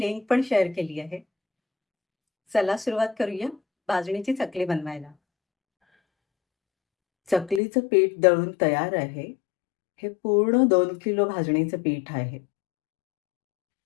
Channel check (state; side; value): drops out; right; at 7.6 s